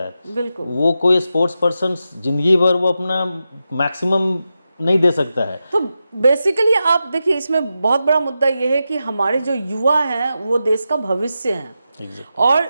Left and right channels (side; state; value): both; inverted; correlation -0.89